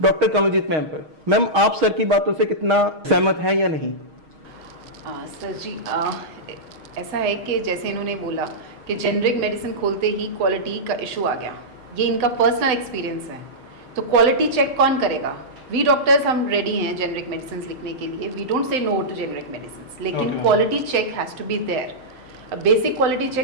कमलजीत मैम पर। मैम, आप सर की बातों से कितना सहमत हैं या नहीं? सर जी, ऐसा है कि जैसे इन्होंने बोला कि जेनरिक मेडिसिन खोलते ही क्वालिटी का इशू आ गया, ये इनका पर्सनल एक्सपीरियंस है। तो क्वालिटी चेक कौन करेगा? वी डॉक्टर्स हम रेडी हैं जेनरिक मेडिसिन लिखने के लिए, we don't say no to generic medicine, लेकिन quality check has to be there. Basic quality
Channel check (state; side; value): late; left; 6.4 ms